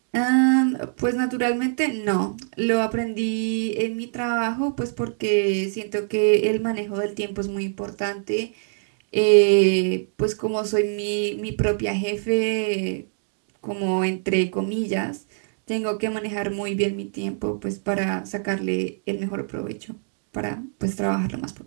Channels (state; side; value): silent; left; digital silence